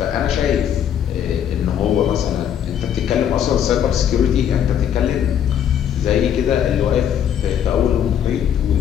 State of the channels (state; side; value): quieter; right; 9.3 dB